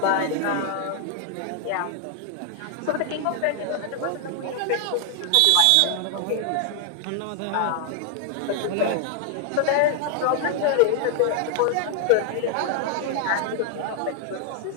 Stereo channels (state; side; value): different; both; correlation 0.00